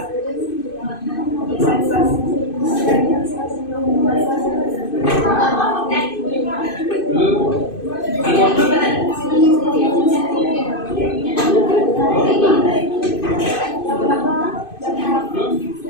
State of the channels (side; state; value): right; late; 2.5 ms